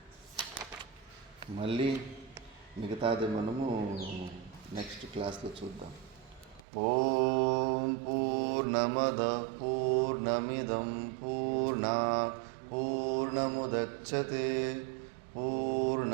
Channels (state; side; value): drops out; left; at 6.7 s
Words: మళ్ళీ మిగతాది మనము నెక్స్ట్ క్లాస్లో చూద్దాం. ఓం పూర్ణమద పూర్ణమిదం పూర్ణాత్ పూర్ణముదచ్యతే